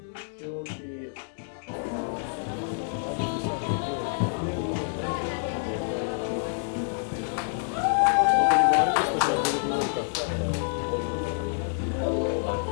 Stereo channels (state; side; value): silent; right; digital silence